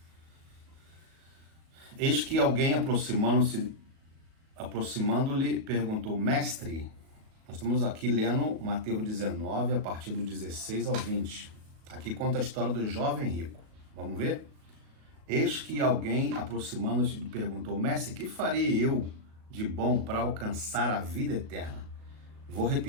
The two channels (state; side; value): late; left; 37 ms